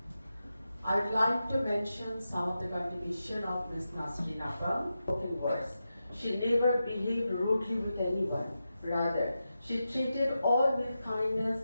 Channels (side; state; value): both; inverted; correlation -0.90